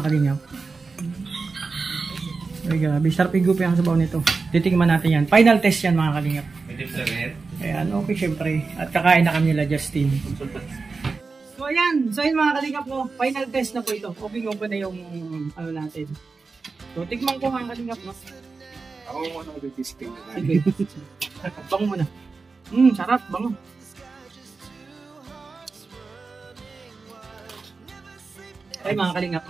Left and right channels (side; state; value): left; quieter; 4.3 dB